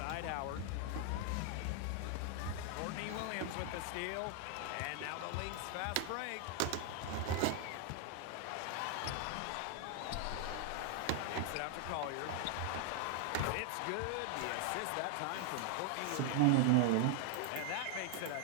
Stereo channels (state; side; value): different; both; correlation 0.00